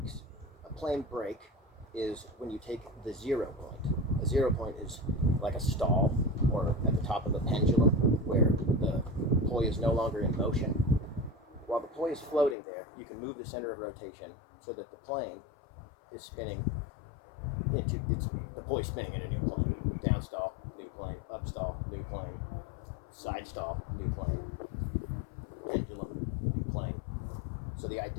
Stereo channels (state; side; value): drops out; right; at 12.6 s